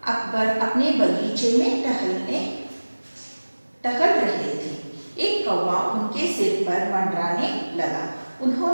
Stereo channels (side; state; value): both; inverted; correlation -1.00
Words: अकबर अपने बगीचे में टहल रहे थे। एक कौवा उनके सिर पर मंडराने लगा।